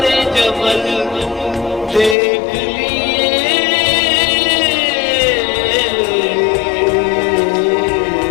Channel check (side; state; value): right; drops out; at 2.1 s